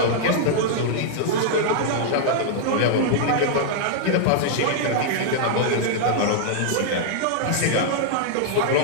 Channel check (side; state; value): both; different; correlation -0.01